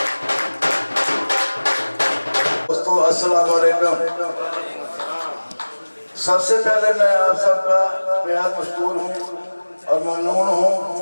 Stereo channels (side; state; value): both; inverted; correlation -1.00